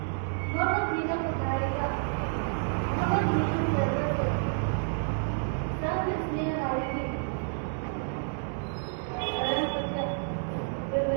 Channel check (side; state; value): left; silent; 56 dB below the other